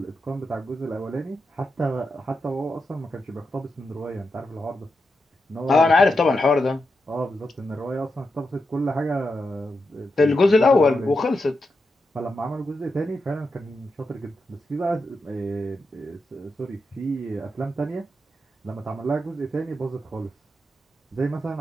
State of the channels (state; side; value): normal; both; correlation 0.87